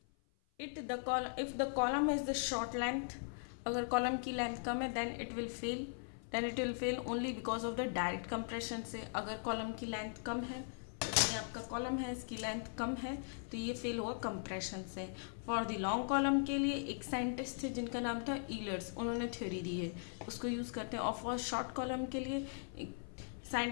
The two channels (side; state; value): right; silent; 51 dB below the other